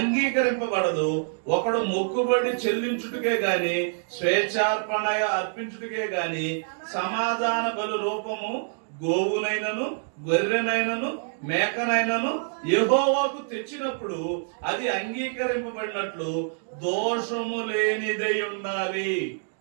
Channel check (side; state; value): left; silent; digital silence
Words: ఒకడు మొక్కుబడి చెల్లించుటకే గాని స్వేచ్ఛార్పణ అర్పించుటకే గాని సమాధాన బలు రూపము గోవునైనను గొర్రెనైనను మేకనైనను యెహోవాకు తెచ్చినప్పుడు అది అంగీకరింపబడినట్లు దోషము లేనిదై ఉండాలి.